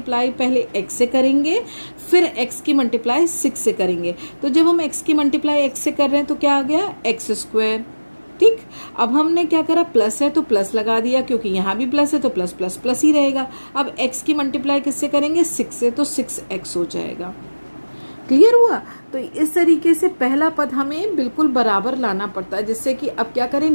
पहले x से करेंगे, फिर x की मल्टीप्लाई 6 से करेंगे। तो जब हम x की मल्टीप्लाई x से कर रहे हैं तो क्या आ गया, x²। ठीक। अब हमने क्या करा, प्लस है तो प्लस लगा दिया, क्योंकि यहाँ भी प्लस है तो प्लस प्लस प्लस ही रहेगा। अब x की मल्टीप्लाई किससे करेंगे, 6 से, तो 6x हो जाएगा। क्लियर हुआ। तो तो इस तरीके से पहला पद हमें बिल्कुल बराबर लाना पड़ता है, जिससे कि अब क्या करें,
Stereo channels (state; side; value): inverted; both; correlation -1.00